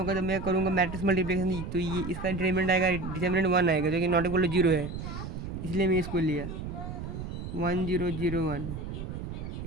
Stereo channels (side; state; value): right; noise; rumble, 7 dB below the sound